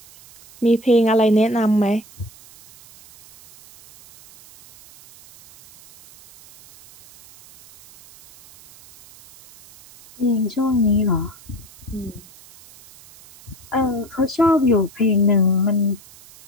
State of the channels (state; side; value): noise; right; hiss, 23 dB below the sound